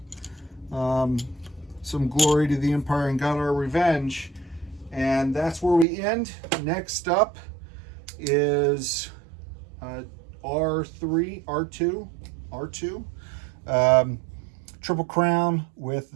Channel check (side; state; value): left; drops out; at 5.9 s